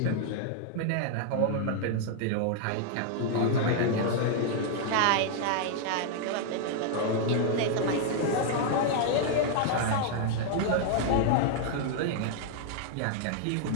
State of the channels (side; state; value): both; different; correlation 0.00